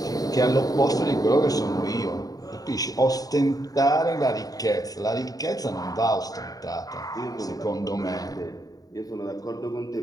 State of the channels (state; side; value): late; right; 0.18 ms